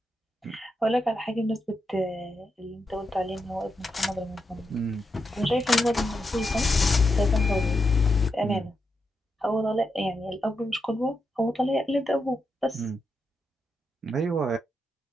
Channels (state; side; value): normal; both; correlation 0.85